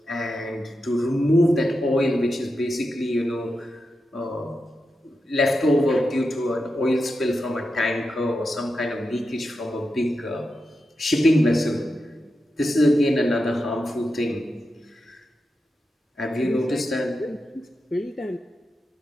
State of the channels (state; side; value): normal; both; correlation 0.88